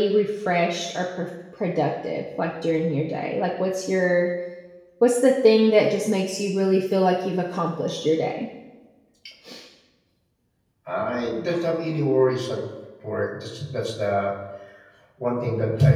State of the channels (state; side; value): identical; both; correlation 1.00